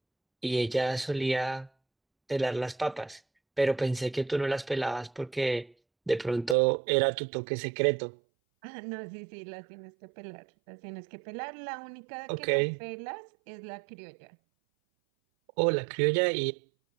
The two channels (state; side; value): drops out; left; at 6.6 s